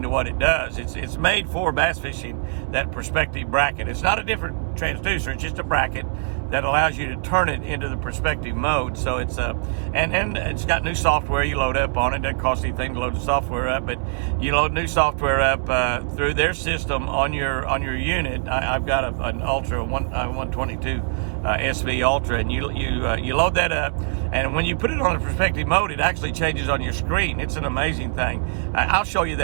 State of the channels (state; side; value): silent; left; 61 dB below the other